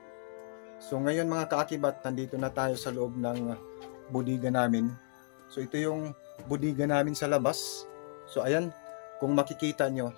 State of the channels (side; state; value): right; silent; digital silence